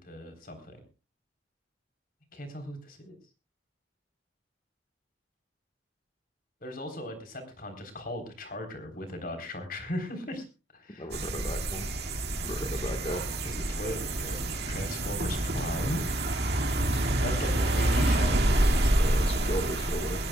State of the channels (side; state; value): both; normal; correlation 0.73